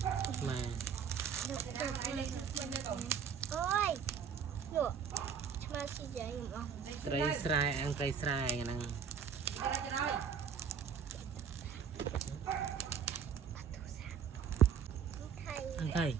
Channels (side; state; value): left; quieter; 7.1 dB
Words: mà ôi được mà xin dạy không cây sài ăn cây sài nè ăn thầy